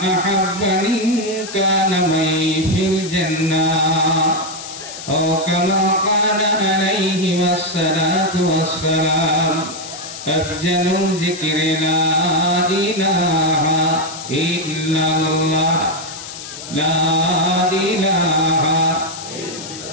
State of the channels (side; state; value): left; noise; hiss, 11 dB below the sound